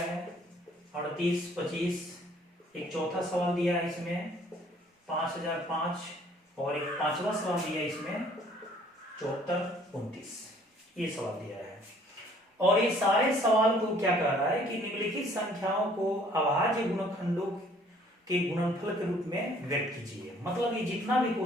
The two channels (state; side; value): normal; both; correlation 0.58